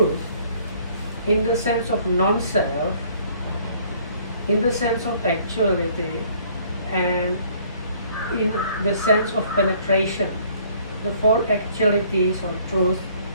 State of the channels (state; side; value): inverted; both; correlation -0.59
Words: in the sense of non-self, in the sense of actuality, and in the sense of penetration, the four actualities or truth